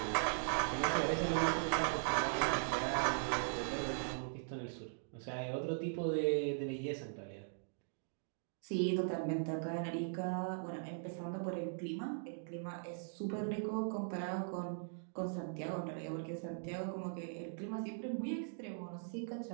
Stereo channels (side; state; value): left; silent; digital silence